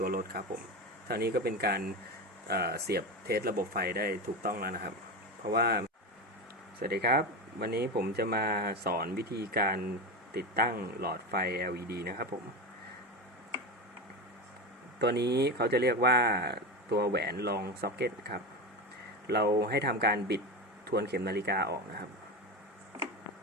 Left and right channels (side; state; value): both; normal; correlation 0.20